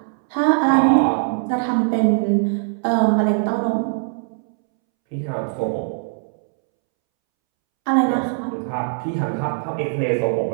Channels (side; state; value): left; silent; 65 dB below the other